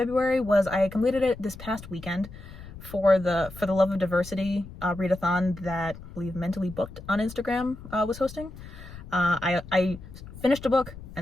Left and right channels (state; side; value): noise; left; rumble, 15 dB below the sound